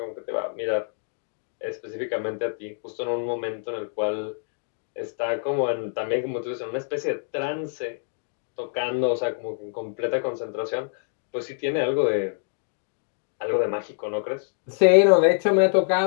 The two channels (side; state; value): right; silent; digital silence